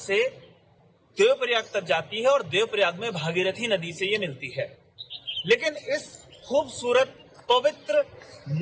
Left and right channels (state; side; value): identical; both; correlation 1.00